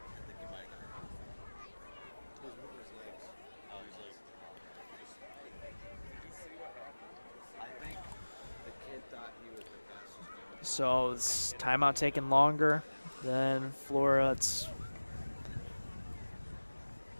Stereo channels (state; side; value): inverted; both; correlation -1.00